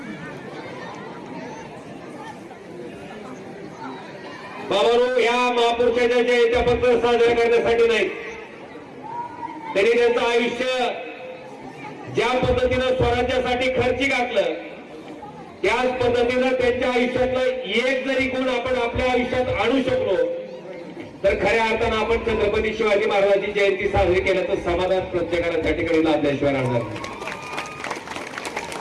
बाबांनो, या महापुरुषाच्या जयंत्या फक्त साजऱ्या करण्यासाठी नाही, त्यांनी त्यांचं आयुष्य ज्या पद्धतीनं स्वराज्यासाठी खर्ची घातलं, त्याच पद्धतीनं त्यांच्या आयुष्यातलं एक जरी गुण आपण आपल्या आयुष्यात आणू शकलो तर खऱ्या अर्थानं आपण छत्रपती शिवाजी महाराजांची जयंती साजरी केल्याचं समाधान प्रत्येकाला त्या ठिकाणी लाभल्याशिवाय राहणार नाही.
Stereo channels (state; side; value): identical; both; correlation 1.00